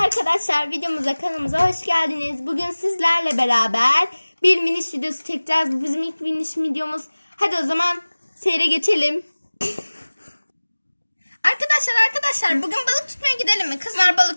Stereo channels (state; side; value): inverted; both; correlation -1.00